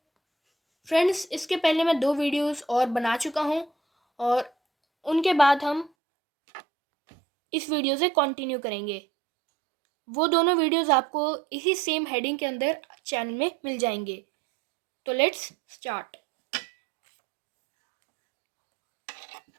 फ्रेंड्स, इसके पहले मैं 2 वीडियोस और बना चुका हूं और उनके बाद हम इस वीडियो से कंटिन्यू करेंगे। वो दोनों वीडियोस आपको इसी सेम हेडिंग के अंदर चैनल में मिल जाएंगे। तो लेट्स स्टार्ट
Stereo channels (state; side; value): drops out; left; at 5.9 s